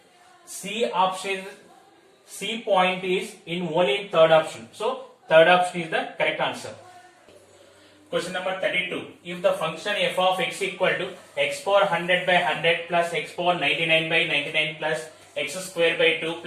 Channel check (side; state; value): both; identical; correlation 1.00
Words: C option, C point is in only third option. So third option is the correct answer. Question number 32. If the function f of x equal to x power 100 by 100 plus x power 99 by 99 plus x square by 2